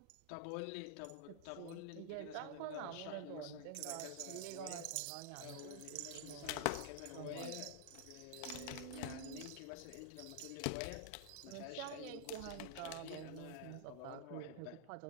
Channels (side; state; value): both; different; correlation 0.00